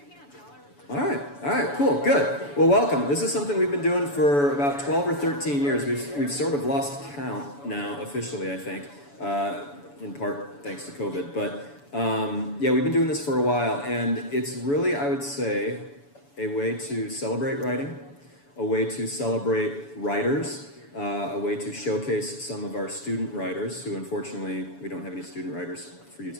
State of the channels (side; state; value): right; late; 7.0 ms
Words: All right, cool, good. Well, welcome. This is something we've been doing for about 12 or 13 years. We've sort of lost count now, officially, I think, in part thanks to COVID. But yeah, we've been doing this for a while, and it's really, I would say, a way to celebrate writing, a way to celebrate writers, a way to showcase some of our student writers, who unfortunately, we don't have any student writers for you